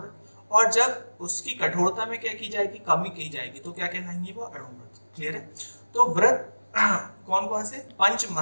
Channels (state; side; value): inverted; both; correlation -1.00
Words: और जब उसकी कठोरता में क्या की जाएगी, कमी की जाएगी, तो क्या कहलाएंगे, वो अणुव्रत। क्लियर है। तो व्रत कौन कौन से, 5